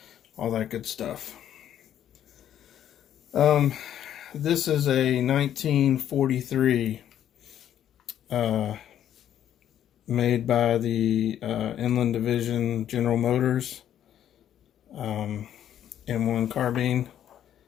all that good stuff. This is a 1943 made by the Inland Division General Motors M1 Carbine.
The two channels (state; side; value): quieter; right; 10.6 dB